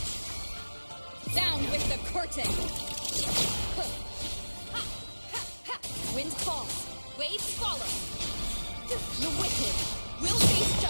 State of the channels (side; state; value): both; inverted; correlation -1.00